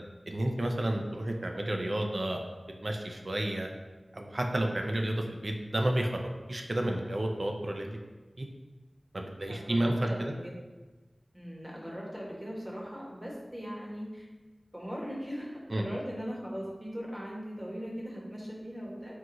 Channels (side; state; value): both; normal; correlation 0.98